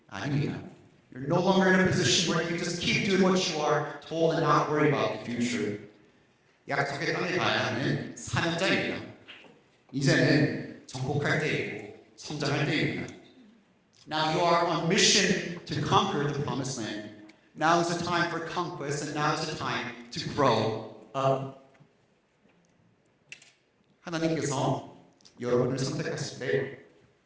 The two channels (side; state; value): both; identical; correlation 1.00